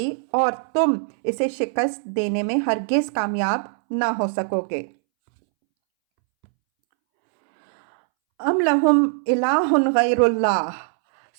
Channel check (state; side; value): silent; left; 65 dB below the other